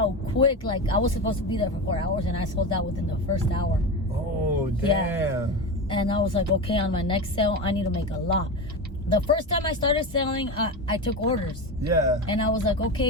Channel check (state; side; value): normal; both; correlation 0.21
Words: quick. Like, I was supposed to be there for 4 hours, and I sold out within the first hour. Oh, damn. Yeah. And I was like, okay, on my next sale, I need to make a lot. The first time I started selling, I took orders. Yeah. And I was like,